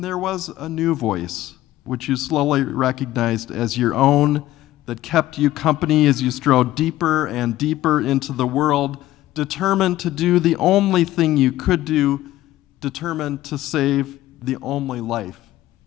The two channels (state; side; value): quieter; right; 15.1 dB